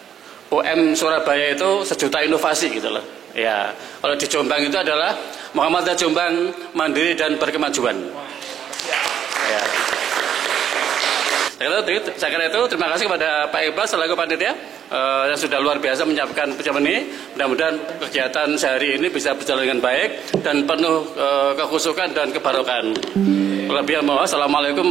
UM Surabaya itu sejuta inovasi gitu loh. Ya, kalau di Jombang itu adalah Muhammadiyah Jombang mandiri dan berkemajuan. Ya. Saya kira itu terima kasih kepada Pak Iqbal selaku panitia yang sudah luar biasa menyiapkan pertemuan ini. Mudah-mudahan kegiatan sehari ini bisa berjalan dengan baik dan penuh kekhusyukan dan kebarokan. Assalamualaikum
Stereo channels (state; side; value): quieter; left; 9.3 dB